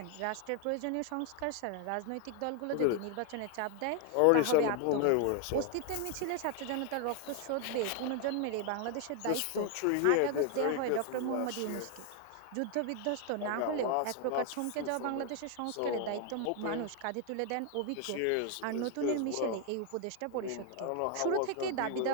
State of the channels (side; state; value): both; different; correlation 0.00